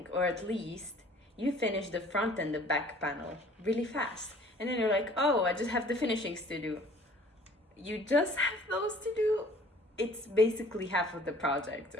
or at least you finish the front and the back panel really fast, and then you're like, oh, I just have the finishings to do. You just have those to do. It's basically half of the project,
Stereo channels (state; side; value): normal; both; correlation 0.52